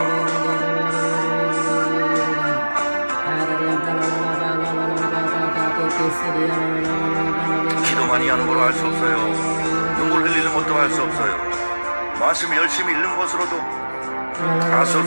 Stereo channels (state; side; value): inverted; both; correlation -1.00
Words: 기도 많이 하는 걸로 할 수 없어요. 눈물 흘리는 것도 할 수 없어요. 말씀 열심히 읽는 것으로도 할 수